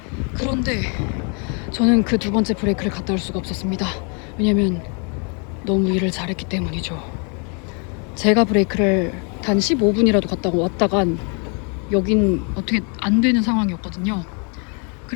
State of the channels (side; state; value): right; quieter; 37.2 dB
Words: 그런데 저는 그 2번째 브레이크를 갔다 올 수가 없었습니다. 왜냐면 너무 일을 잘했기 때문이죠. 제가 브레이크를 단 15분이라도 갔다 왔다간 여긴 어떻게 안 되는 상황이었거든요.